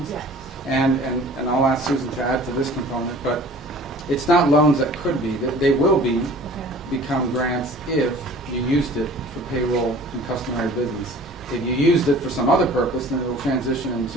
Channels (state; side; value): normal; both; correlation 0.46